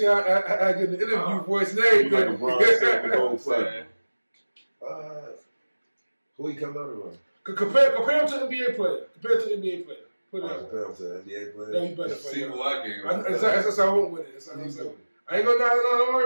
I get the interview voice name. Who he come out around? Compare him to NBA player. Put it out. Compare him to NBA player. No, you better see who I gave. That's how I went with it. I ain't gonna don't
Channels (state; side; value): inverted; both; correlation -1.00